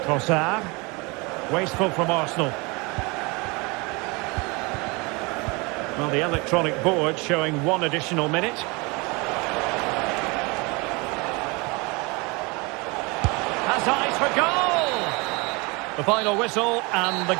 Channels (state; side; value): quieter; left; 27.3 dB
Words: Trossard. Wasteful from Arsenal. Well, the electronic board showing 1 additional minute. Has eyes for goal! The final whistle, and the